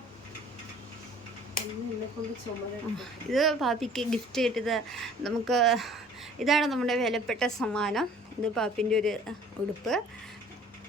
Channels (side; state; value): both; normal; correlation 0.51